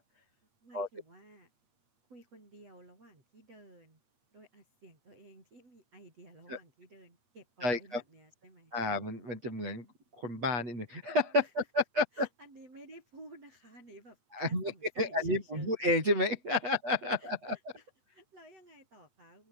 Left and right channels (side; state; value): left; late; 8.5 ms